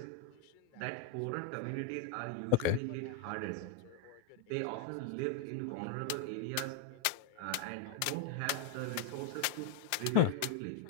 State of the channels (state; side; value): different; both; correlation 0.01